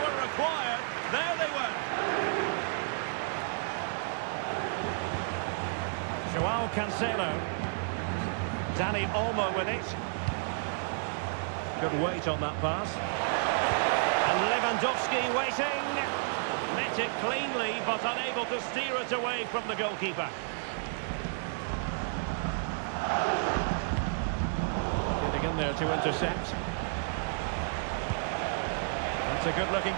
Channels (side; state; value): left; silent; digital silence